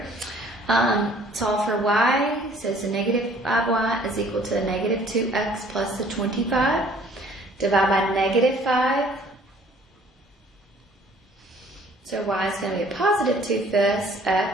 Solve for y, so it's a negative 5y is equal to a negative 2x plus the 25. Divide by negative 5. So y is going to be a positive 2/5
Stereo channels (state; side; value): normal; both; correlation 0.56